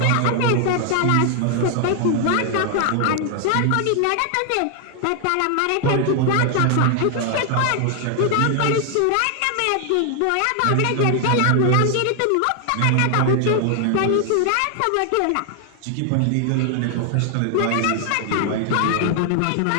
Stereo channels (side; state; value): both; different; correlation 0.00